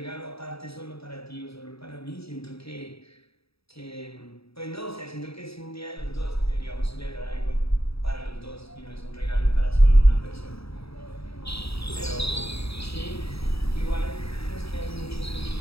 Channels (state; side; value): late; right; 0.77 ms